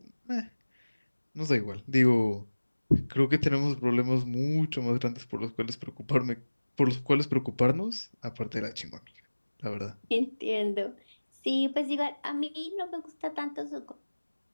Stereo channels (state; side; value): inverted; both; correlation -1.00